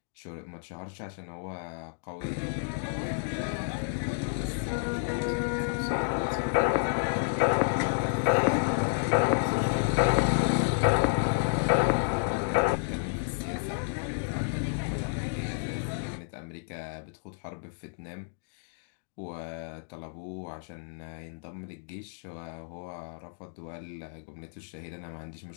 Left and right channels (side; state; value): right; silent; digital silence